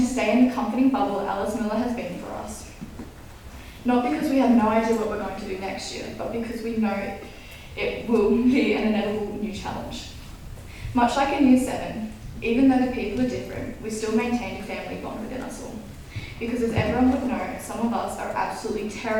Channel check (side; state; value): both; identical; correlation 1.00